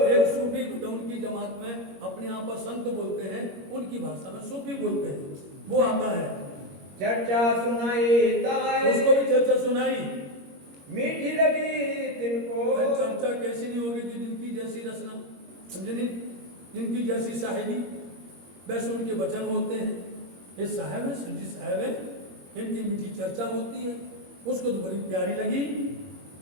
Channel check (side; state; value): left; late; 21 ms